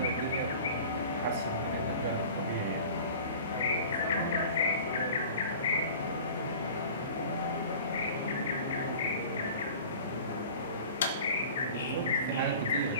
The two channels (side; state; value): both; inverted; correlation -0.42